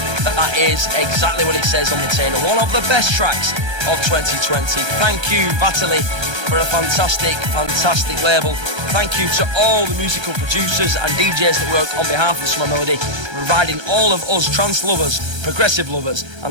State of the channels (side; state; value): left; late; 1.3 ms